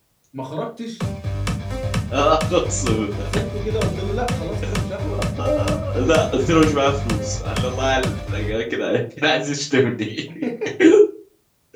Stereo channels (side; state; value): both; identical; correlation 1.00